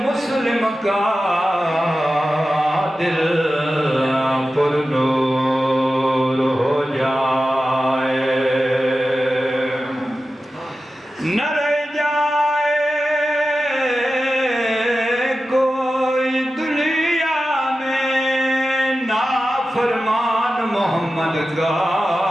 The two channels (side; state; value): both; normal; correlation 0.93